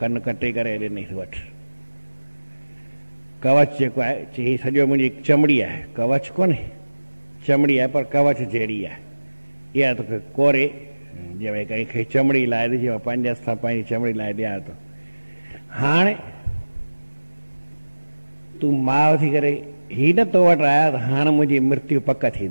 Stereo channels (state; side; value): inverted; both; correlation -1.00